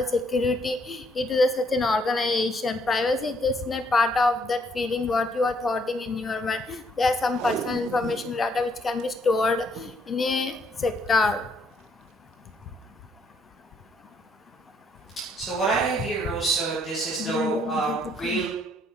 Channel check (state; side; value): normal; both; correlation 0.69